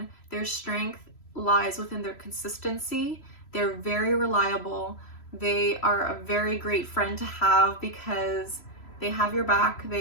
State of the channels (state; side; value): late; right; 3.0 ms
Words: Their strength lies within their consistency. They're very reliable. They are a very great friend to have because they have your back.